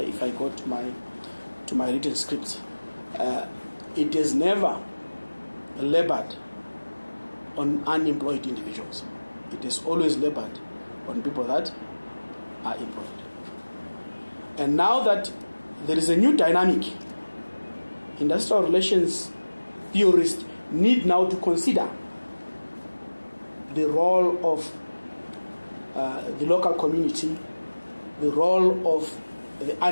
go to my written scripts. It has never labored on unemployed individuals. It has always labored on people that are employed. And now that there is a new dynamic, industrial relations theorists need now to consider the role of the local community, the role of the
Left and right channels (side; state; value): both; inverted; correlation -1.00